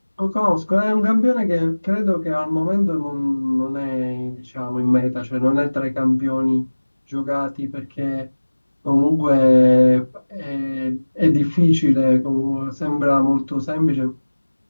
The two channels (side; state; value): both; inverted; correlation -1.00